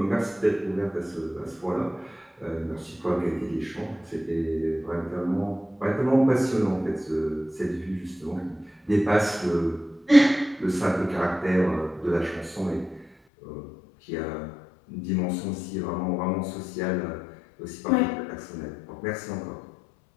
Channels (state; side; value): drops out; right; at 13.1 s